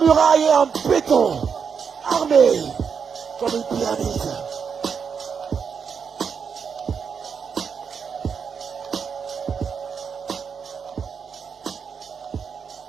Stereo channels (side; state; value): left; quieter; 6.5 dB